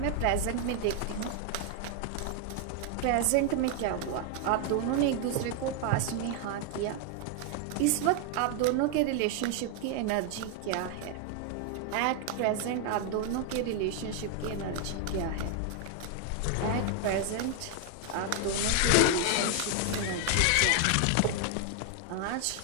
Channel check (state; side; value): different; both; correlation 0.00